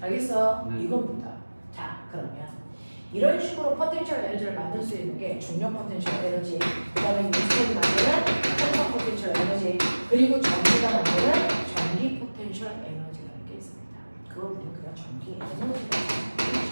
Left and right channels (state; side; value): inverted; both; correlation -1.00